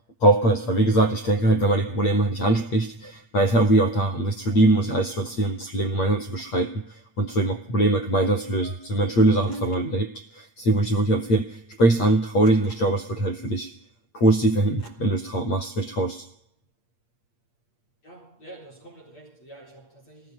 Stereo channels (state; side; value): late; right; 8.6 ms